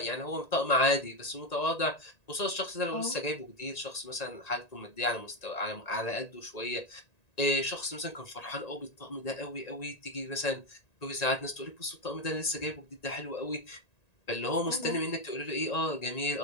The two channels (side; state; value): right; late; 1.9 ms